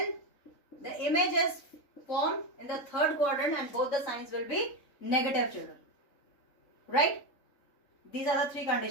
the image is formed in the third quadrant and both the signs will be negative, children. Right? These are the three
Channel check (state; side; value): late; right; 3.6 ms